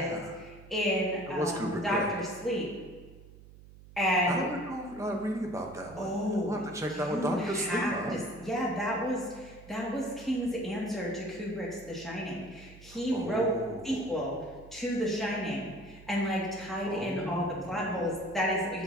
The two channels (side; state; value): right; noise; hum, 19 dB below the sound